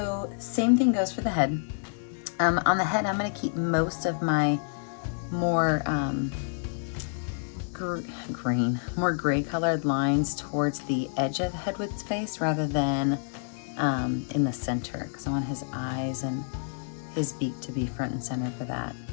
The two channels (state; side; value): silent; right; digital silence